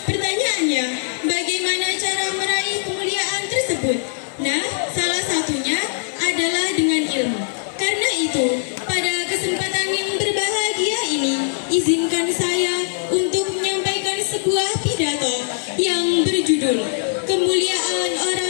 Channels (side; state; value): right; silent; 55 dB below the other